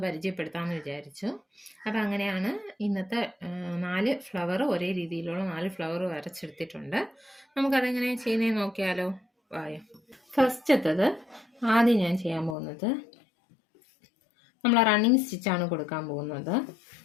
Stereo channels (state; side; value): drops out; right; at 12.6 s